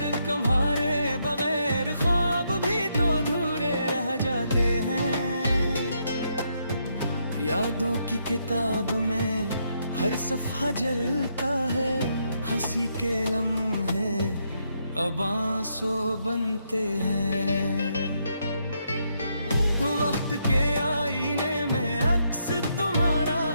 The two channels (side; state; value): both; inverted; correlation -0.77